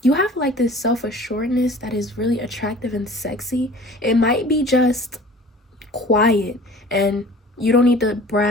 You have like this self-assuredness that is really attractive and sexy. It might be just quiet, and you don't need to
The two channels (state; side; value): normal; both; correlation 0.45